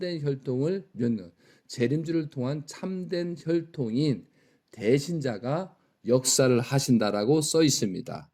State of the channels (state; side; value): identical; both; correlation 1.00